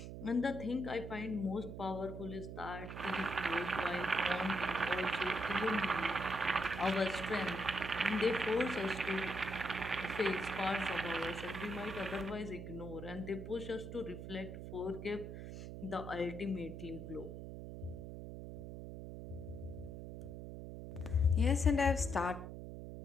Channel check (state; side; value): noise; right; hum, 9 dB below the sound